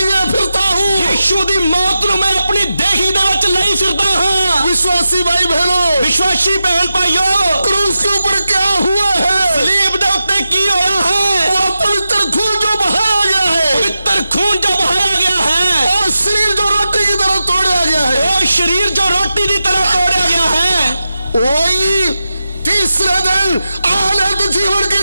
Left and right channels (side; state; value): both; inverted; correlation -0.91